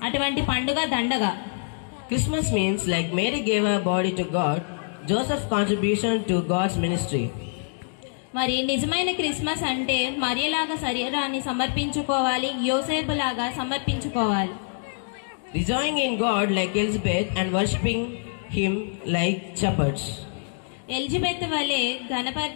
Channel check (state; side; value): silent; right; digital silence